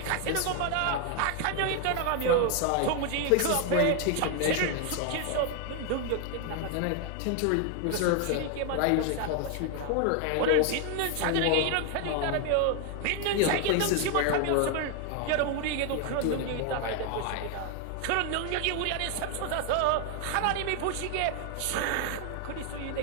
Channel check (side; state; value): both; different; correlation 0.00